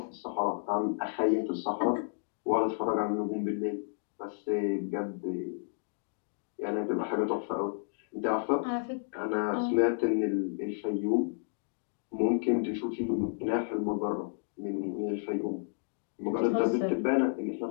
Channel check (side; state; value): right; silent; digital silence